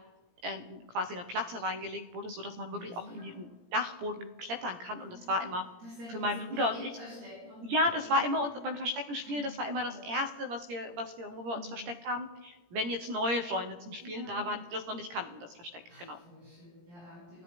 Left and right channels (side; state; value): left; late; 17 ms